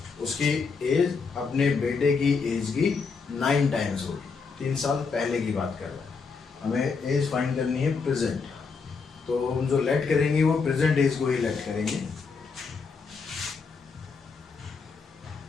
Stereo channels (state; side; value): quieter; right; 5.0 dB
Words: उसकी एज अपने बेटे की एज की 9 times होगी। 3 साल पहले की बात कर रहा है। हमें एज फाइंड करनी है प्रेजेंट, तो हम जो लेट करेंगे वो प्रेजेंट एज को ही लेट करेंगे।